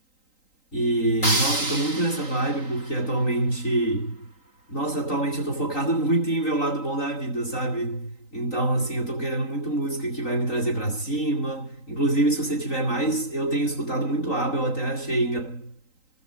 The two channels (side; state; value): right; late; 3.9 ms